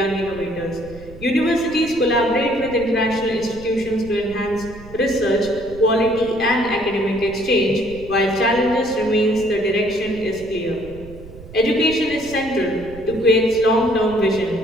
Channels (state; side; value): noise; right; rumble, 17 dB below the sound